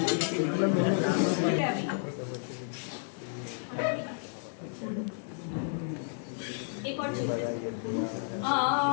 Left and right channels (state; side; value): silent; right; 57 dB below the other